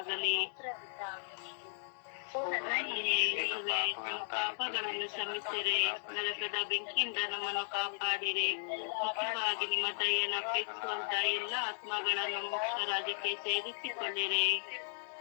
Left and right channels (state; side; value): silent; right; digital silence